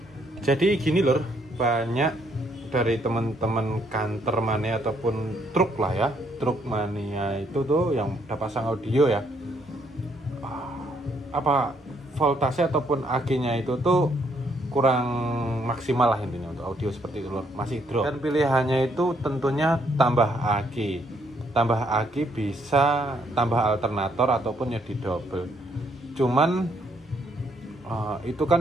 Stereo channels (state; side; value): normal; both; correlation 0.71